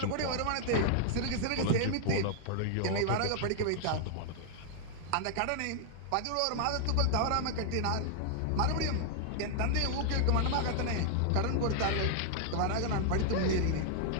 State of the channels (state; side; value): different; both; correlation -0.01